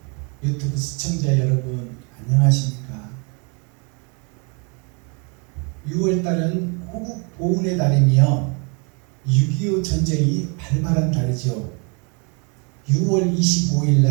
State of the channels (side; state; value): left; quieter; 34.2 dB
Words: 유튜브 시청자 여러분 안녕하십니까? 6월달은 호국 보훈의 달이며 6.25 전쟁이 발발한 달이죠. 6월 25일